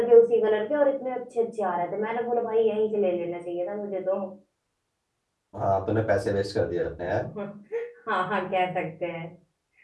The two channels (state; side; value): identical; both; correlation 1.00